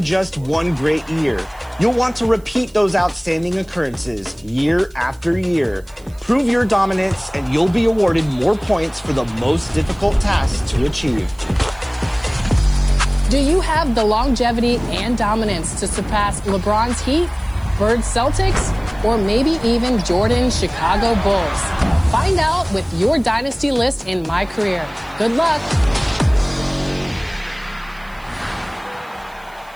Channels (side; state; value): right; noise; hiss, 28 dB below the sound